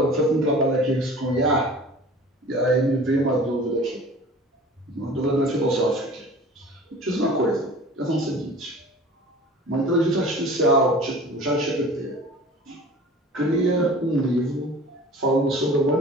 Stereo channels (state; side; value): normal; both; correlation 0.43